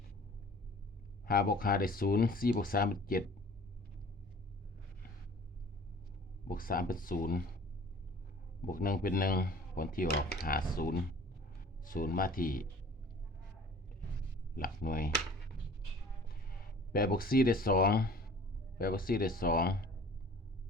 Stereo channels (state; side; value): normal; both; correlation 0.48